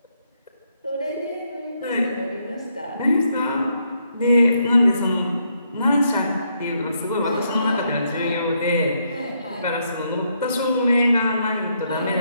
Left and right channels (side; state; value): both; inverted; correlation -0.76